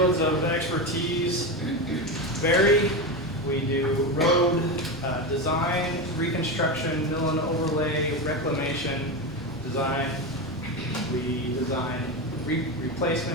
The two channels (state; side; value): normal; both; correlation 0.17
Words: of expertise vary. We do road design, reconstruction, mill and overlay, reclamation design. We design